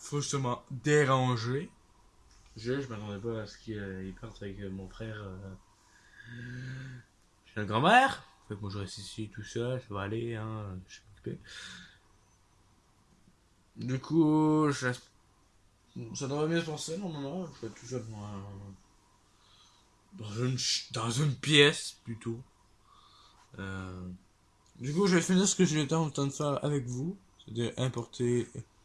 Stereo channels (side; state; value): both; identical; correlation 1.00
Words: dérangé. Je m'attendais pas à ce qu'il parte avec mon frère chez la grand-mère. Fait que moi je reste ici tout seul, ça va aller, hein, je suis occupé. Du coup, ça devrait bien se passer normalement. Je vais tout seul dans une pièce plutôt. Euh, du coup, je vais finir ce que j'ai en train de faire avec vous, c'est-à-dire importer